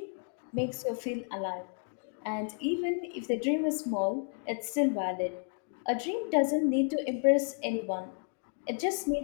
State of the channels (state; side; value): silent; right; 56 dB below the other